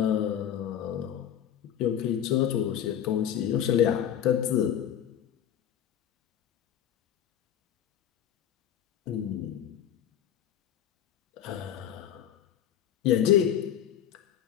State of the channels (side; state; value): right; quieter; 10.0 dB